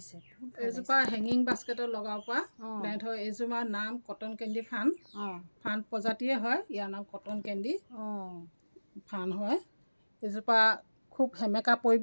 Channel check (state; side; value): inverted; both; correlation -1.00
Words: এজোপা হেঙিং বাস্কেটত লগাব পৰা প্লেণ্ট হয়। এইজোপাৰ নাম কটন কেণ্ডি ফান। ফান প্ৰজাতিয়ে হয়। ইয়াৰ নাম কটন কেণ্ডি ফান হয়। এজোপা খুব সেমেকা